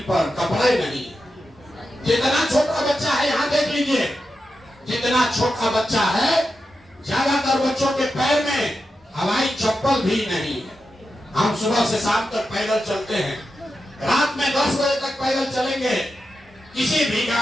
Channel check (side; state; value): both; normal; correlation 0.89